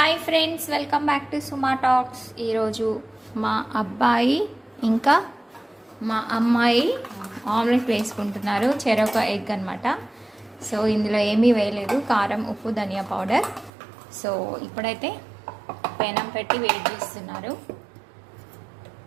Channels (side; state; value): left; drops out; at 13.7 s